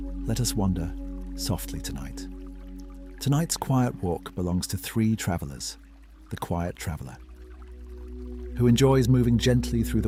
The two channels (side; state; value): both; identical; correlation 1.00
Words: let us wander softly tonight. Tonight's quiet walk belongs to 3 travelers. The quiet traveler, who enjoys moving gently through